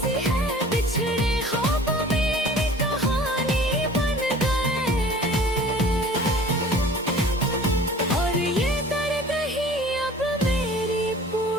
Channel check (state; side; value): normal; both; correlation 0.46